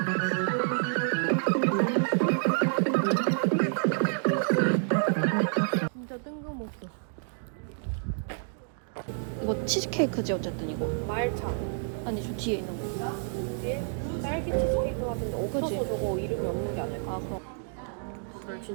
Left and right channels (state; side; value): silent; left; digital silence